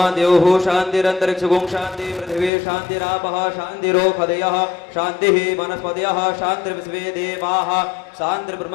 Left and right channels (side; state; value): right; drops out; at 2.5 s